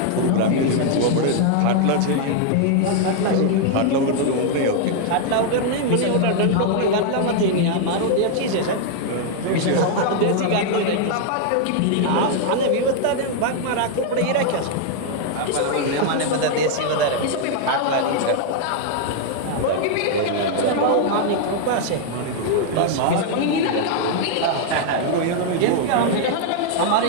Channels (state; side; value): different; both; correlation 0.00